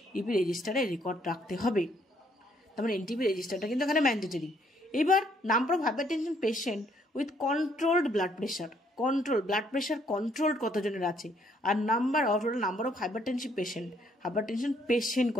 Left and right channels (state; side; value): normal; both; correlation 0.68